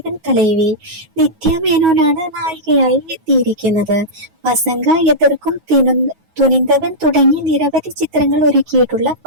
തലൈവി. നിത്യ മേനോനാണ് നായികയായി എത്തിയിരിക്കുന്നത്. വസങ്ക എതിർക്കും തുനിന്തവൻ തുടങ്ങി നിരവധി ചിത്രങ്ങൾ ഒരുക്കിയിട്ടുള്ള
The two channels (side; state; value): left; late; 9.3 ms